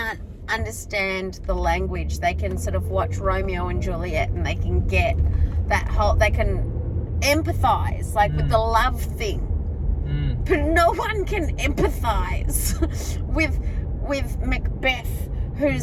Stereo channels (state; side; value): identical; both; correlation 1.00